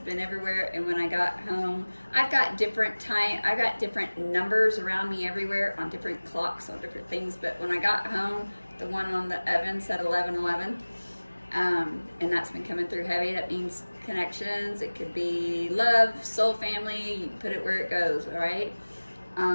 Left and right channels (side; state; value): both; inverted; correlation -1.00